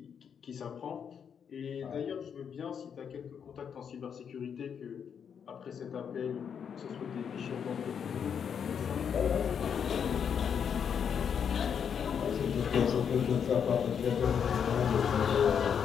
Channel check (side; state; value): right; quieter; 7.5 dB